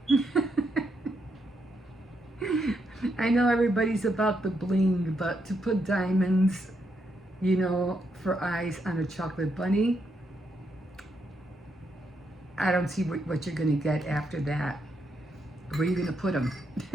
I know everybody's about the bling, but to put diamonds, you know, for eyes on a chocolate bunny, I don't see what you're going to get after that. Where are you going to put them?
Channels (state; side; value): normal; both; correlation 0.79